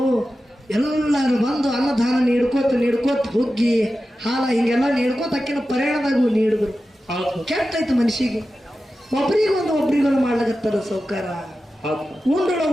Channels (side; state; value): both; normal; correlation 0.93